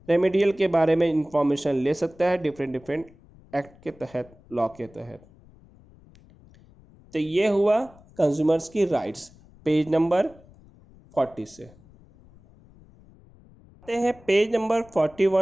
रेमेडियल के बारे में इंफॉर्मेशन ले सकता है डिफरेंट एक्ट के तहत, लॉ के तहत। तो ये हुआ कंज्यूमर्स की राइट्स, पेज नंबर 40 से। आते हैं पेज नंबर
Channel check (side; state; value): left; noise; rumble, 25 dB below the sound